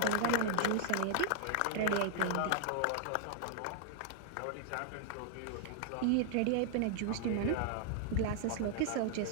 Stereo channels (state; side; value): different; both; correlation 0.00